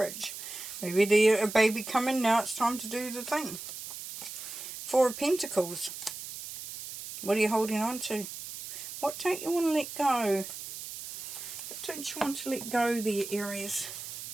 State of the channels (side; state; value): right; noise; hiss, 10 dB below the sound